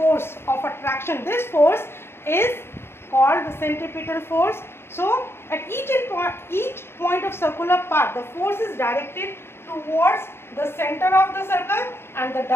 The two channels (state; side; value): late; right; 0.12 ms